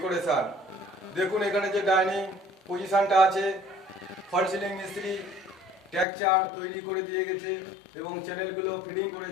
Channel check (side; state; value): right; drops out; at 6.1 s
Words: দেখুন এখানে যে ডাইনিং পজিশনটা আছে, ফল সিলিং মিস্ত্রি টেক্সচার তৈরি করে দিয়ে গেছে এবং চ্যানেলগুলো ফিটিং